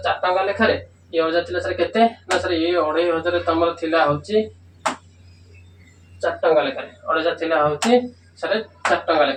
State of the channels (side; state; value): both; identical; correlation 1.00